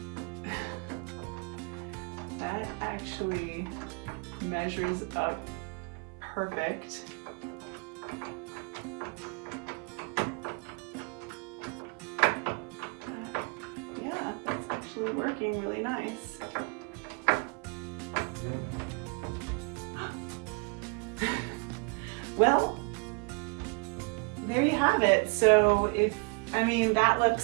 That actually measures up perfect. Yeah, that's actually working really nice. Well, there you have it. So that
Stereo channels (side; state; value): left; quieter; 33.5 dB